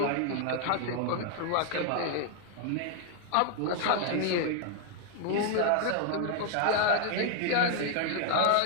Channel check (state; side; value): different; both; correlation 0.00